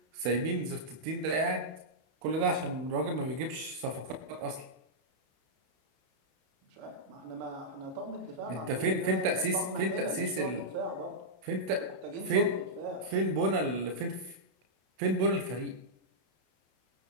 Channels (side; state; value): left; late; 32 ms